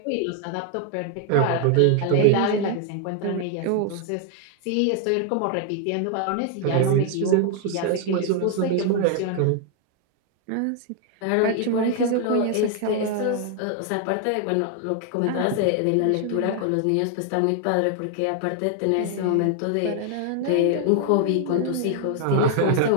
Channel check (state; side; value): different; both; correlation 0.00